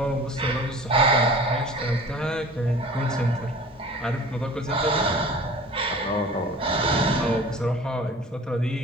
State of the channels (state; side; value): normal; both; correlation 0.42